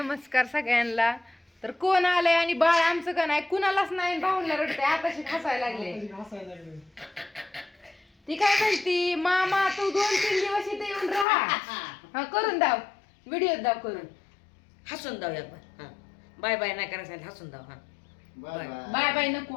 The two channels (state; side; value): drops out; right; at 11.2 s